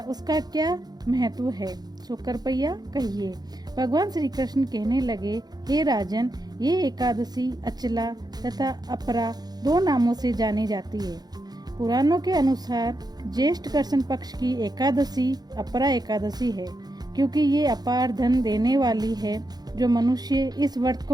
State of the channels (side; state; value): left; late; 0.19 ms